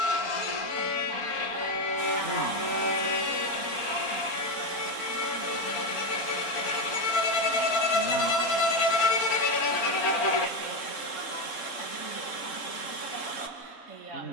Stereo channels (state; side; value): late; right; 3.7 ms